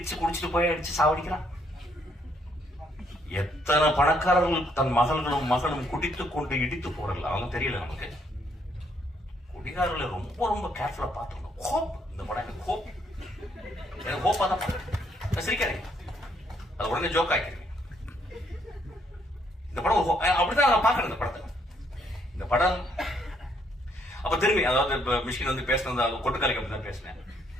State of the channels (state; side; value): normal; both; correlation 0.71